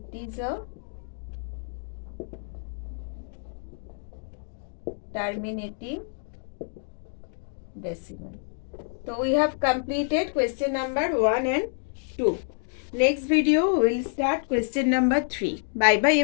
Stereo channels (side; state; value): right; silent; digital silence